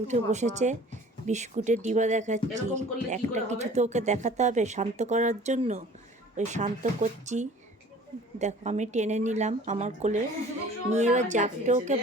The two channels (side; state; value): both; normal; correlation 0.48